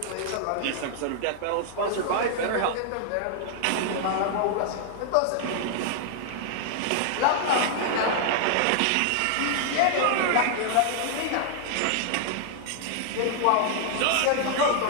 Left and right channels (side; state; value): both; different; correlation -0.01